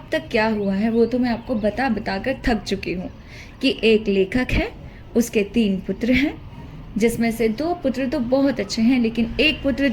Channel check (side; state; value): both; identical; correlation 1.00